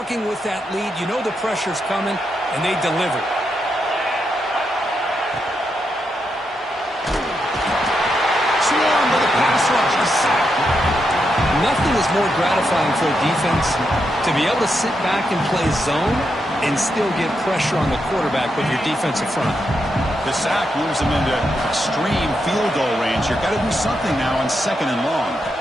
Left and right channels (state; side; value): normal; both; correlation 0.83